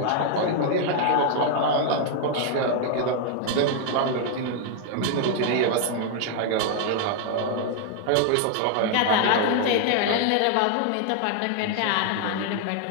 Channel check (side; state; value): both; different; correlation 0.00